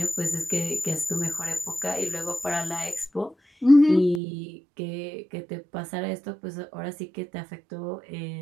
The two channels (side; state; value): left; drops out; at 4.2 s